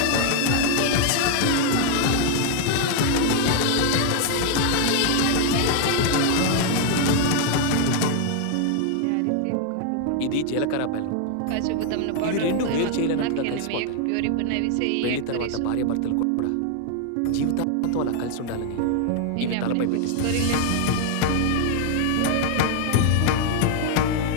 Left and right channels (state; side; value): different; both; correlation 0.00